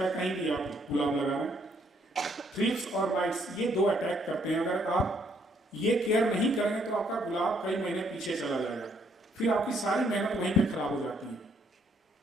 कहीं भी आप गुलाब लगा रहे हैं। थ्रिप्स और माइट्स ये 2 अटैक करते हैं। अगर आप ये केयर नहीं करेंगे तो आपका गुलाब कई महीने पीछे चला जाएगा, फिर आपकी सारी मेहनत वहीं पे खराब हो जाती है।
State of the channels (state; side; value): normal; both; correlation 0.69